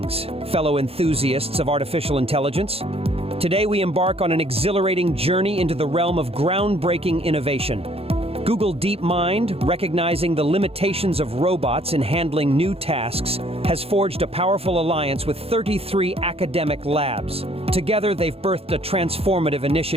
fellow enthusiasts of artificial intelligence. Today we embark on an exhilarating journey into the realm of groundbreaking innovation. Google DeepMind, recognizing the limitations of robots in handling new tasks, has forged a powerful alliance with 33 academic labs. Together, they've birthed a transformative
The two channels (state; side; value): late; left; 0.28 ms